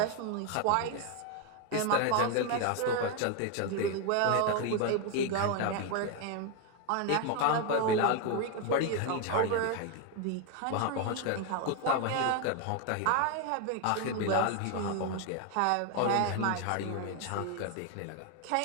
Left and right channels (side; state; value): both; different; correlation 0.01